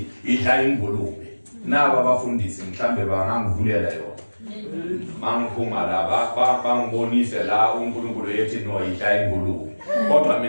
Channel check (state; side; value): inverted; both; correlation -1.00